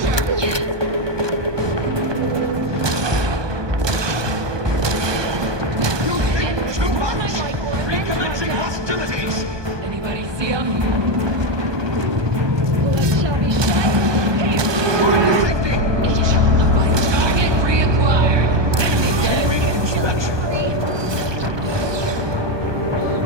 Anybody see him? Target reacquired. Enemy dead. Inspection.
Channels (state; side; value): late; left; 1.2 ms